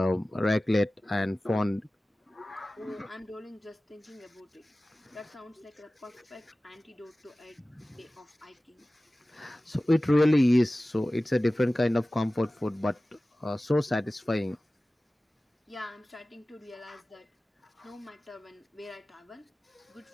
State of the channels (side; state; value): both; normal; correlation 0.97